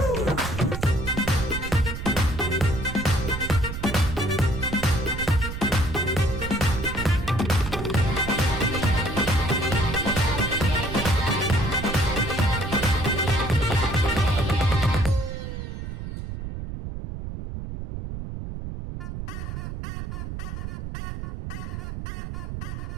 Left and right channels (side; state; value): right; noise; rumble, 7 dB below the sound